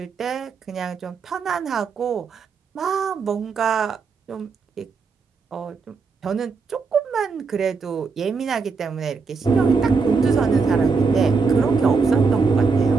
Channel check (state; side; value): quieter; left; 4.9 dB